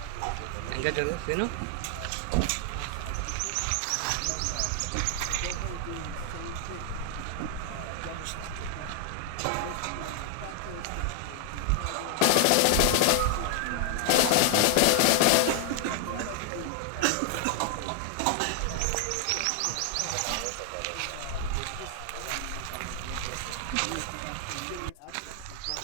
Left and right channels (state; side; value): different; both; correlation 0.00